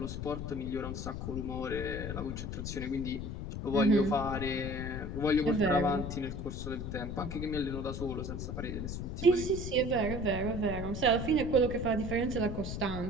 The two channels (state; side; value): noise; left; rumble, 5 dB below the sound